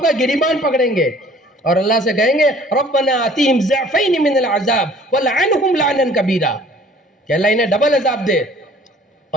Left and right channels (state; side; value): normal; both; correlation 0.53